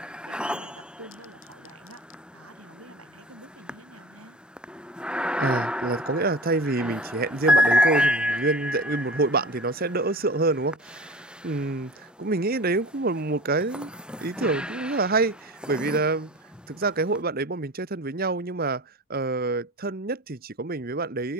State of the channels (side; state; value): both; normal; correlation 0.35